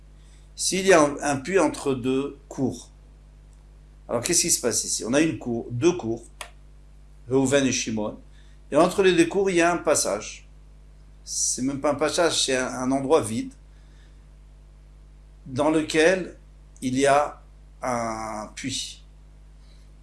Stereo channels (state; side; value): identical; both; correlation 1.00